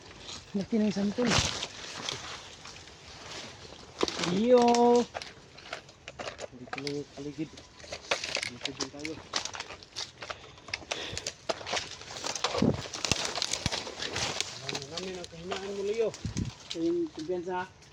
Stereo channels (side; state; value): both; identical; correlation 1.00